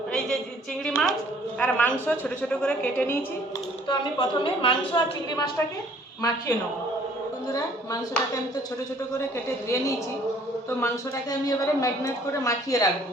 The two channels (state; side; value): normal; both; correlation 0.58